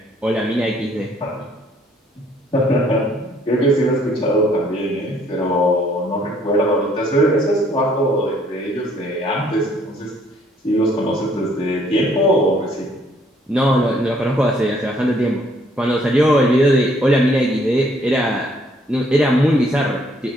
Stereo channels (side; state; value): both; normal; correlation 0.64